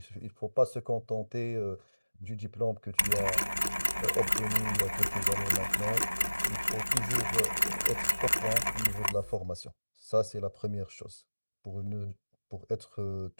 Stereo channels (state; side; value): inverted; both; correlation -1.00